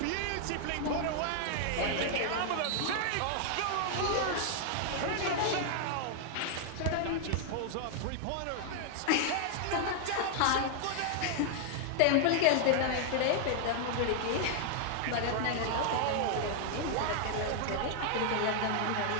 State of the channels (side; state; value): both; different; correlation 0.00